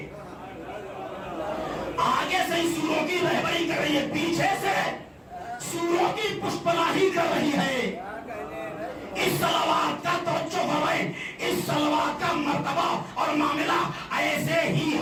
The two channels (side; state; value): both; identical; correlation 1.00